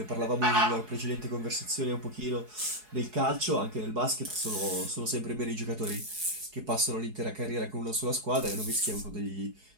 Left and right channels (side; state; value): left; late; 4.7 ms